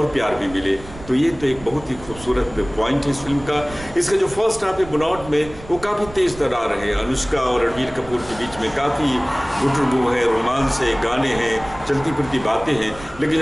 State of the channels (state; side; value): noise; right; rumble, 16 dB below the sound